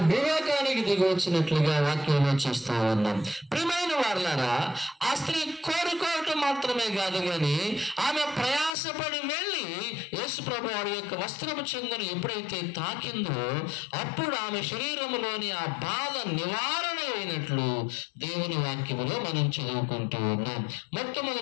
భూలోకానికి దిగి వచ్చినట్లుగా వాక్యంలో చూస్తా ఉన్నాం. ప్రియమైన ప్రియమైన వారలారా, ఆ స్త్రీ కోరుకోవటం మాత్రమే కాదు కానీ ఆమె ప్రయాసపడి వెళ్ళి యేసు ప్రభు వారి యొక్క వస్త్రపు చెంగును ఎప్పుడైతే తాకిందో అప్పుడు ఆమె శరీరంలోని ఆ బాధ నివారణ అయినట్లు దేవుని వాక్యములో మనం చదువుకుంటూ ఉన్నాం.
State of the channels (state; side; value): drops out; right; at 8.7 s